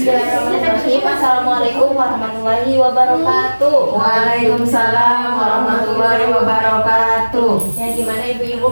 Assalamualaikum warahmatullahi wabarakatuh. Waalaikumsalam warahmatullahi wabarakatuh. Ya, gimana ibu-ibu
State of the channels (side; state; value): both; inverted; correlation -1.00